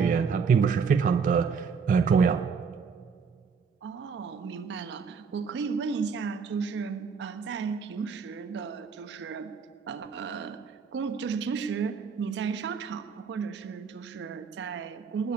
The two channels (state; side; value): quieter; left; 5.8 dB